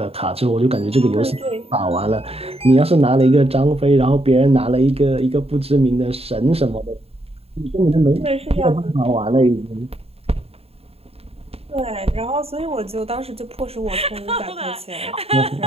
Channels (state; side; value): late; left; 0.29 ms